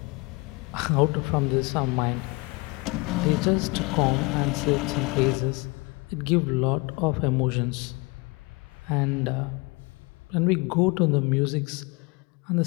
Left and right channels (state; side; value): quieter; right; 26.9 dB